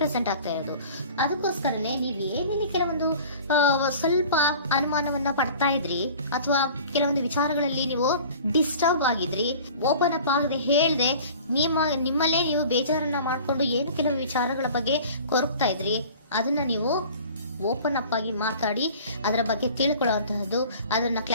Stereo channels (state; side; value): inverted; both; correlation -0.44